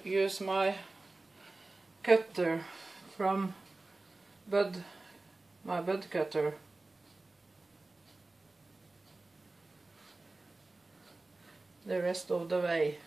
use my cutter from my bud cutter. The rest of the way.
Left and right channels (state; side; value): quieter; left; 3.2 dB